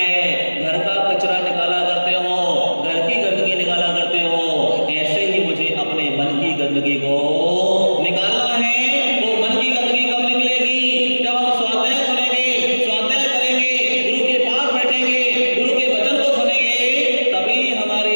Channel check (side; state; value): both; inverted; correlation -1.00